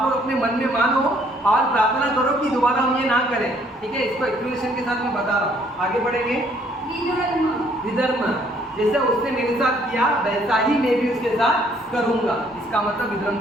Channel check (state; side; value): normal; both; correlation 0.64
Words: लोग अपने मन में मानो और प्रार्थना करो कि दोबारा हम ये ना करें। ठीक है, इसको एक्सप्लेनेशन के साथ मैं बता रहा हूँ। आगे बढ़ेंगे। विधर्म, जैसे उसने मेरे साथ किया वैसा ही मैं भी उसके साथ करूंगा। इसका मतलब विधर्म